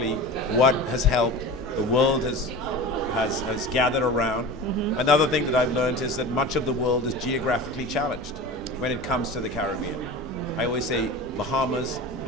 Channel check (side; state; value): both; normal; correlation 0.32